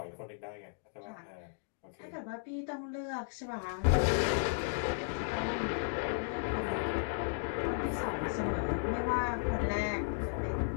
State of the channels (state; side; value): silent; right; digital silence